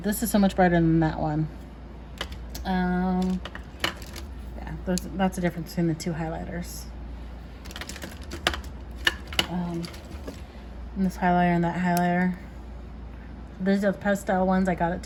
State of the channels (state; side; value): identical; both; correlation 1.00